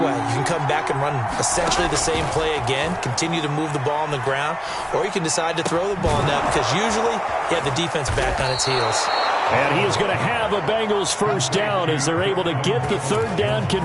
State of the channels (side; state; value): both; identical; correlation 1.00